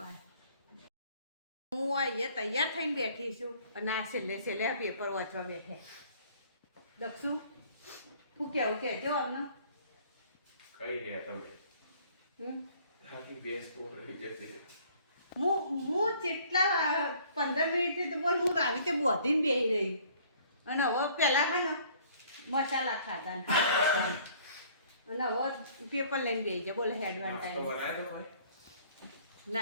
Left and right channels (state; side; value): inverted; both; correlation -0.56